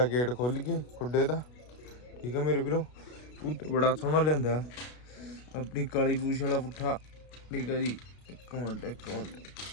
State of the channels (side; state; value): right; late; 33 ms